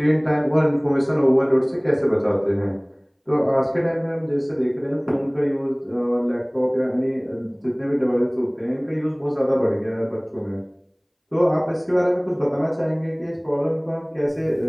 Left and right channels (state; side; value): identical; both; correlation 1.00